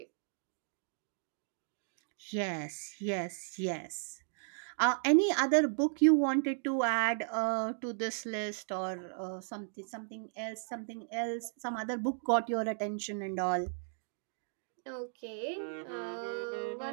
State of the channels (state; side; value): silent; left; digital silence